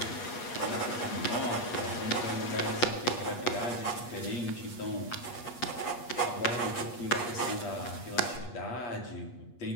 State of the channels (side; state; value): right; late; 8.3 ms